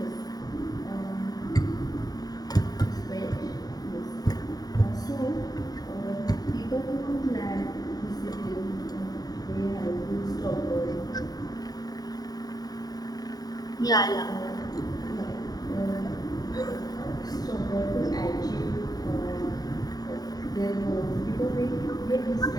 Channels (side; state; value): right; late; 0.18 ms